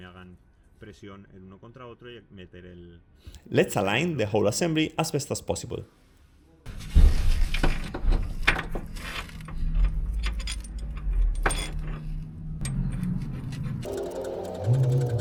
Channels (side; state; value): both; identical; correlation 1.00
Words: hagan presión el uno contra otro y meter el... Let's align the whole assembly as best as possible.